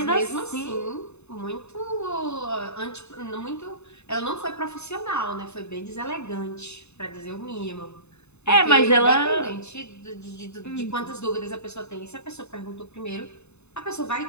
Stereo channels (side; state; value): right; late; 0.81 ms